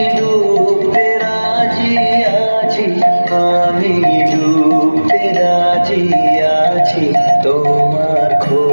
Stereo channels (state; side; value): inverted; both; correlation -1.00